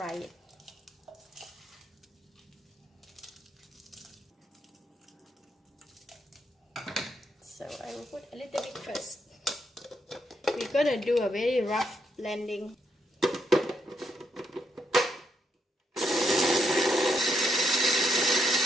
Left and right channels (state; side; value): normal; both; correlation 0.77